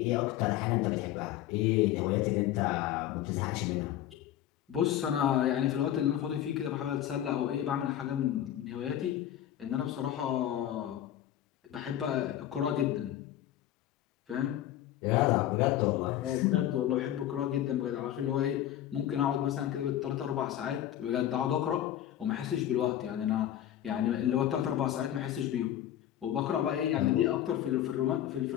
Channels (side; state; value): right; quieter; 12.0 dB